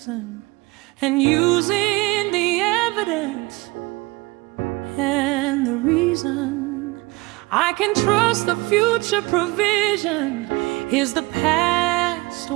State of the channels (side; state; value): left; quieter; 23.7 dB